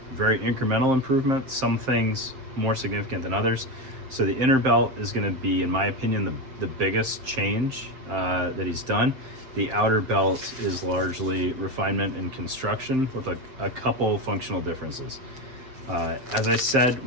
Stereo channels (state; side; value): late; left; 7.7 ms